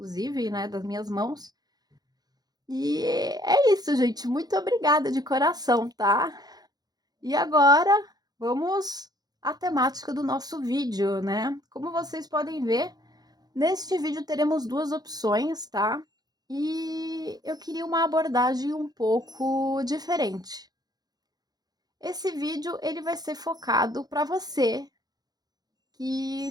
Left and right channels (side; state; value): left; late; 0.19 ms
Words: né, das minhas mãos. E é isso, gente. Muito obrigada de coração, tá? E agora vamos à temática do nosso vídeo, né? Como vocês podem ver, neste vídeo teremos duas opções, tá? E eu queria uma abordagem um pouco diferente. Esse vídeo ele vai ser focado para você